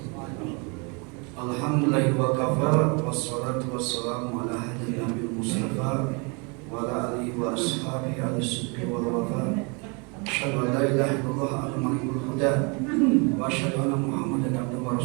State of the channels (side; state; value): left; quieter; 32.3 dB